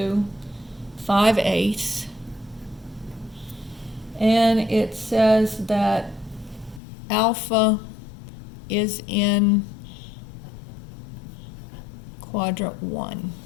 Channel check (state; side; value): drops out; right; at 6.8 s